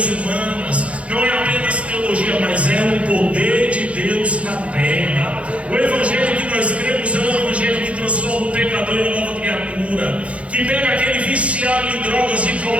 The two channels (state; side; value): late; left; 0.063 ms